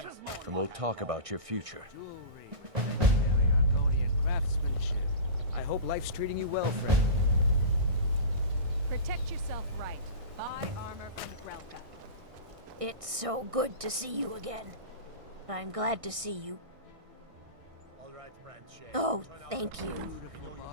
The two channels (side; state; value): left; late; 1.6 ms